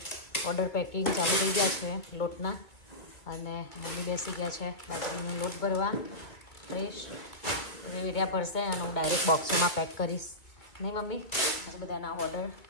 ઓર્ડર પેકિંગ ચાલુ થઈ ગયા છે લોટના. અને મમ્મી બેસી ગયા છે બાજરીનો લોટ ભરવા. ફ્રેશ વેડિયા ભરશે અને હું ડાયરેક્ટ બોક્સમાં પેક કરીશ. નહીં મમ્મી? આજે બધાના ઓર્ડર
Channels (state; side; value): late; right; 2.3 ms